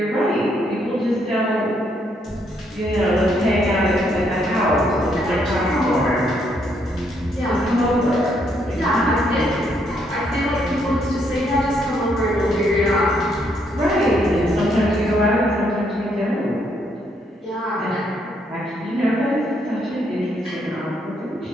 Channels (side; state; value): both; normal; correlation 0.73